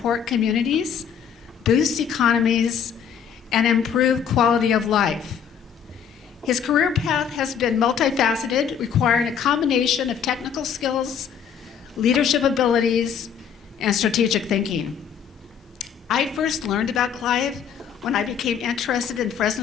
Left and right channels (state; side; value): quieter; right; 7.7 dB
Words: communities, boost economies, and improve quality of life. His career path has been multifaceted, requiring a combination of technical skills, leadership abilities, and strategic thinking. I first learned about Clive when I became interested in